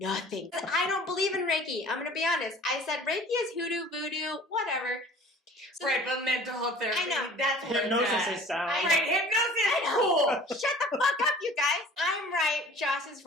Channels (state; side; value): normal; both; correlation 0.47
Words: I don't believe in Reiki. I'm going to be honest. I said Reiki is hoodoo, voodoo, whatever. So right, but mental health therapy, I know. that's what Hypnosis it's at. is sound. Right, hypnosis I is know. cool. Shut the fuck up, you guys. I'm right. Josh is